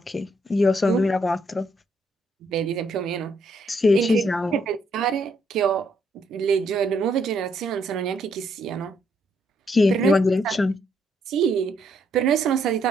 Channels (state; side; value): normal; both; correlation 0.73